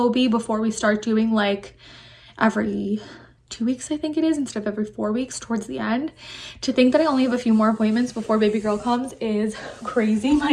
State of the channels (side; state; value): both; identical; correlation 1.00